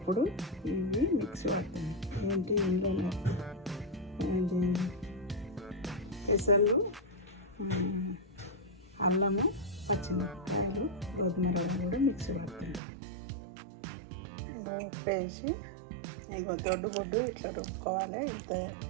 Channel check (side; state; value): left; drops out; at 12.8 s